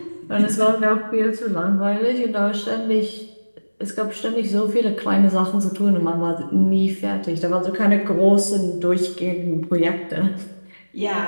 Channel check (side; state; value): both; inverted; correlation -1.00